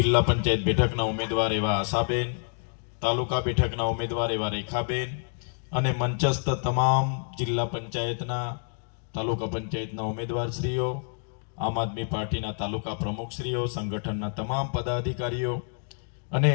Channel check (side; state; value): right; silent; 60 dB below the other